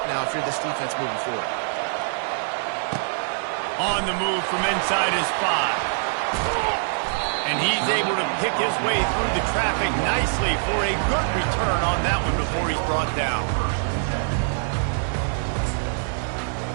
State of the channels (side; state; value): left; silent; digital silence